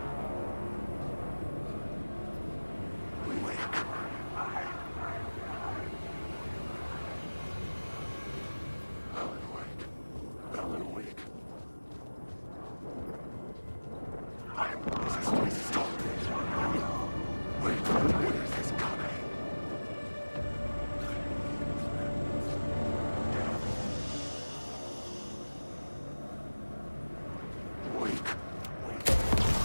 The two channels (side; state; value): both; inverted; correlation -1.00